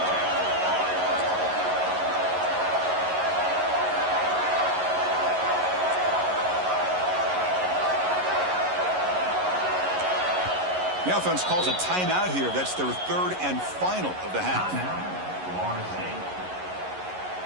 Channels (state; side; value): late; left; 11 ms